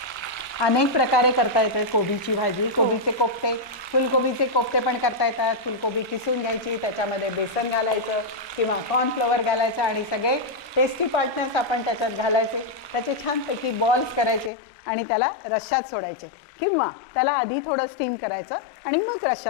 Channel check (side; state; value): right; drops out; at 14.5 s